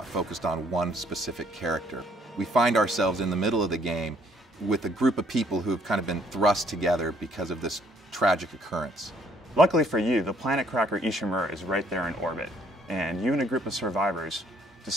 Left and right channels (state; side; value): normal; both; correlation 0.64